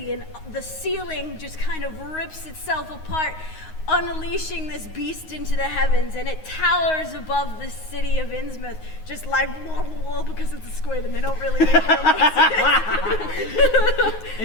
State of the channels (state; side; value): late; right; 9.5 ms